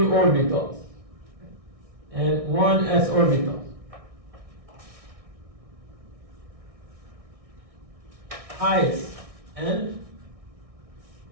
and 1 s orbital. Highest n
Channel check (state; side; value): late; left; 1.6 ms